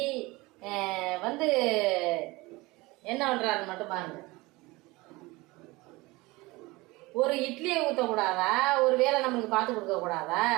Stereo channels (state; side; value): quieter; left; 22.2 dB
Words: என்ன பண்றாரு மட்டும் பாருங்க. ஒரு இட்லியை ஊற்றக்கூடாதா? ஒரு வேலை நம்மளுக்கு பார்த்து கொடுக்க கூடாதா?